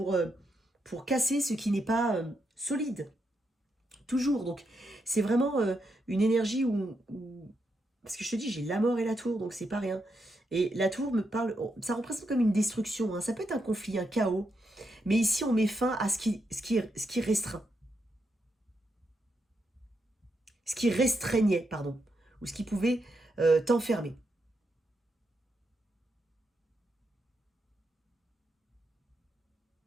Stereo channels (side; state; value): both; normal; correlation 0.82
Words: casser ce qui n'est pas solide. Toujours. Donc, c'est vraiment une énergie où... Parce que je te dis, j'ai la mort et la tour, donc c'est pas rien. Et la tour me parle... Ça représente comme une destruction. Hein. Ça peut être un conflit, un chaos. Mais ici, on met fin à ce qui restreint. Ce qui restreignait, pardon. Ou ce qui pouvait t'enfermer.